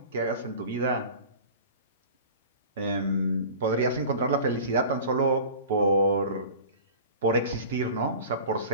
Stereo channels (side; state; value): both; inverted; correlation -0.39